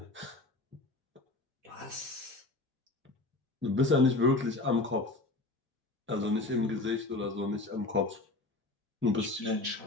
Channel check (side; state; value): right; quieter; 3.1 dB